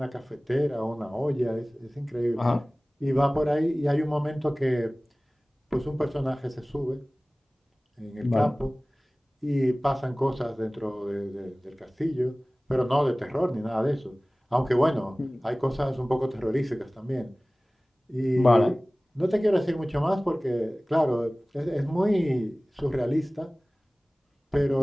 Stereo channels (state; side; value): normal; both; correlation 0.98